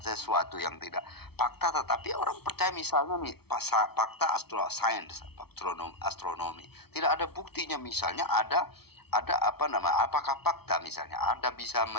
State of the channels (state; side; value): late; right; 0.96 ms